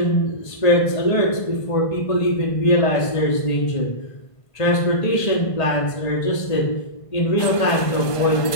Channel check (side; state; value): right; late; 1.5 ms